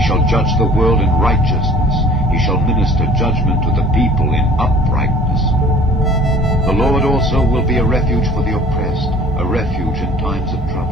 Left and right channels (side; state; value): both; normal; correlation 0.49